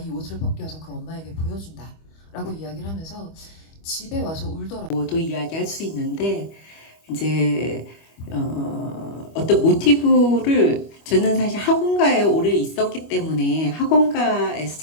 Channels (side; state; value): right; late; 25 ms